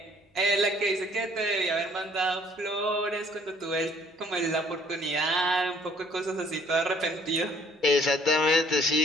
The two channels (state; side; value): normal; both; correlation 0.60